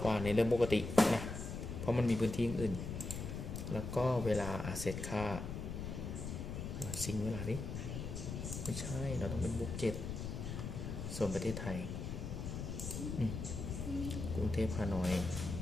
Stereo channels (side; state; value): left; noise; rumble, 5 dB below the sound